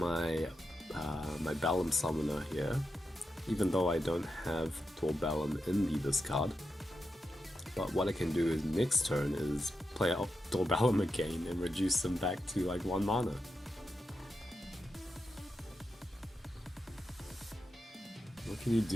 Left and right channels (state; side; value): normal; both; correlation 0.87